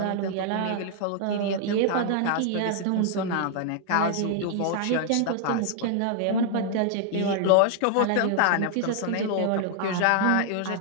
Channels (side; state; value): both; different; correlation 0.00